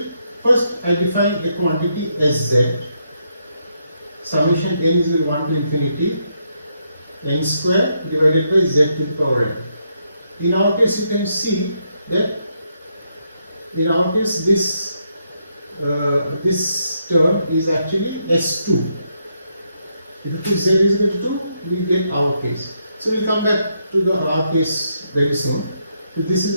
First, I define a quantity Sz. Summation n is equal to 1 to infinity n square divided by z to the power n. In our case, you can see that in our case this term is actually S2. If you put z is equal to 2, we get our case. So we'll come back to the our case very soon. So this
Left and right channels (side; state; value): both; inverted; correlation -0.78